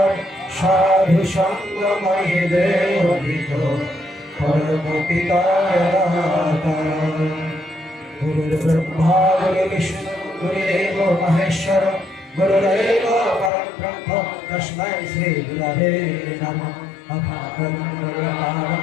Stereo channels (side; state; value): right; drops out; at 13.5 s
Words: সাধু সঙ্গময়ীদের অভিত পরম পিতার দাতার গুরুর্ব্রহ্মা গুরুর্বিষ্ণু গুরুদেব মহেশ্বর গুরুরেব পরম ব্রহ্ম তস্मै শ্রী গুরবে নমঃ অকারণ